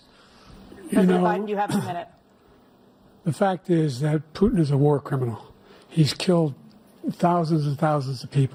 President Biden, you have a minute. The fact is that Putin is a war criminal. He's killed thousands and thousands of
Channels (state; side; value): identical; both; correlation 1.00